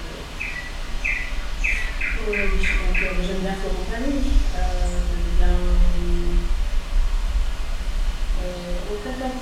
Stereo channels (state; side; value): identical; both; correlation 1.00